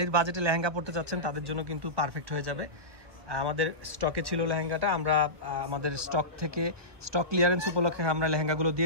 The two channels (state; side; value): late; left; 1.2 ms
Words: বাজেটে লেহেঙ্গা পড়তে চাচ্ছেন তাদের জন্য কিন্তু পারফেক্ট হয়ে যাবে। আমাদের স্টকে ছিল লেহেঙ্গাটা, আমরা আমাদের স্টক থেকে স্টক ক্লিয়ারেন্স উপলক্ষে আমরা লেহেঙ্গাগুলো